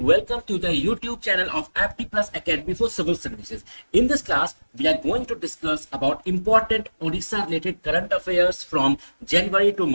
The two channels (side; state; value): both; inverted; correlation -1.00